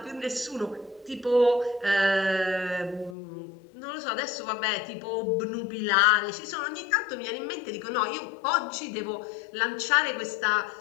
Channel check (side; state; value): right; drops out; at 3.2 s